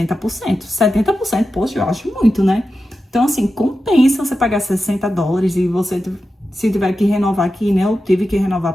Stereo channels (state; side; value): normal; both; correlation 0.91